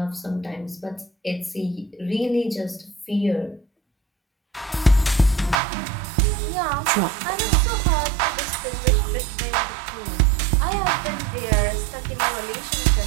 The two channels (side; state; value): left; drops out; at 5.6 s